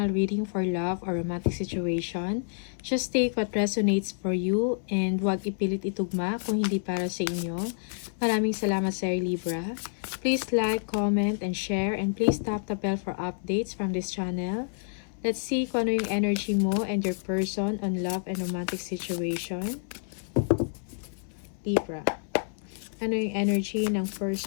reading for love or romantic situation. Just take what resonates for you and huwag ipilit itugma kung hindi para sa inyo. Maraming salamat sa Libra. Please like, comment, and share, and please tap the bell for updates from this channel. Let's see kung ano yung energy mo and your person on love and romantic situation. Libra. Ano yung energy ng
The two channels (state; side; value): silent; right; 59 dB below the other